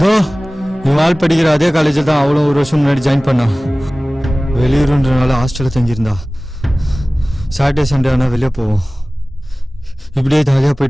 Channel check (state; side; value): normal; both; correlation 0.98